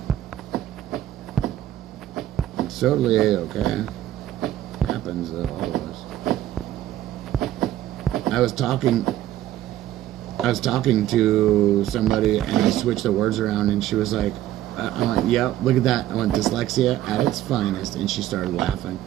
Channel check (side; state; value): left; quieter; 13.2 dB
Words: It's totally A-okay. Happens to all of us. I was talking to somebody and I switched the words around and she was like, I went, yeah, look at that. I went, dyslexia at its finest, and she started laughing.